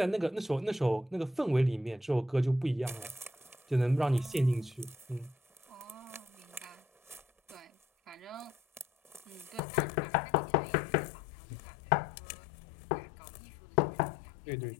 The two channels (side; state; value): right; drops out; at 9.6 s